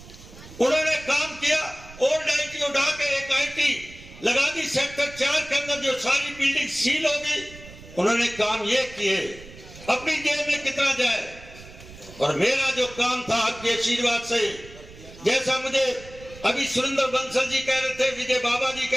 उन्होंने काम किया। ओल्ड आईटी उठा के एक आईटी लगा दी सेक्टर 4 के अंदर, जो सारी बिल्डिंग सील हो गई। उन्होंने काम ये किए, अपनी जेब में कितना जाए। और मेरा जो काम था आपके आशीर्वाद से, जैसा मुझे अभी सुरेंद्र बंसल जी कह रहे थे, विजय बाबा जी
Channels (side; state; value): right; noise; rumble, 18 dB below the sound